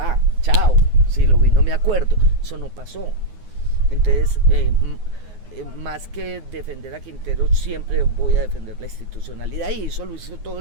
chao, si lo vi no me acuerdo, eso no pasó. Entonces, más que defender a Quintero, siempre voy a defender la institucionalidad, y eso lo hizo todo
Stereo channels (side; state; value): left; late; 9.6 ms